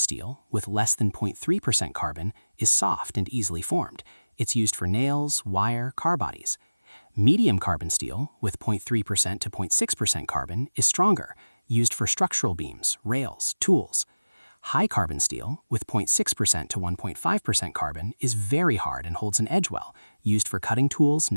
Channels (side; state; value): both; inverted; correlation -0.98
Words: with less than 0.3% carbon, is soft and easily formed. It's used for nails, wire, car bodies. Medium carbon steel, with 0.3% to 0.6% carbon, is stronger, used for structural beams, rails, tools. High carbon steel, with 0.6% to 1.5% carbon, is very hard and holds an edge well, used for cutting tools,